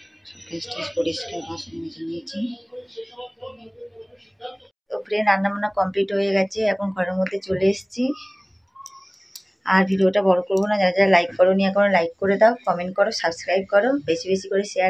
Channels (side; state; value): both; identical; correlation 1.00